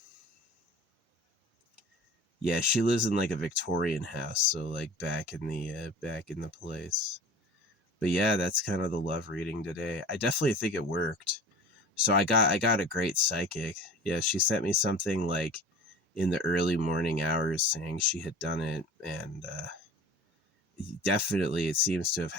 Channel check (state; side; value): normal; both; correlation 0.40